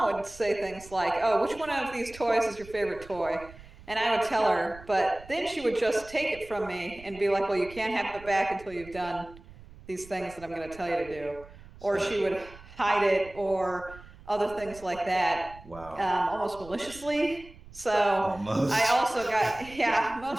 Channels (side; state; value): right; noise; rumble, 19 dB below the sound